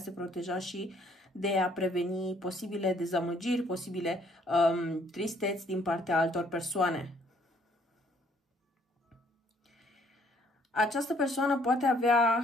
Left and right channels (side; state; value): both; normal; correlation 0.64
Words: proteja și de a preveni posibile dezamăgiri, posibile tristeți din partea altor persoane. Această persoană poate avea